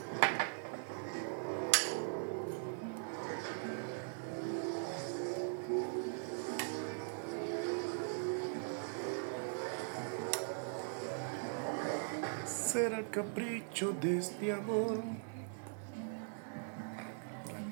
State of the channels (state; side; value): silent; left; digital silence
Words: Será el capricho de este amor.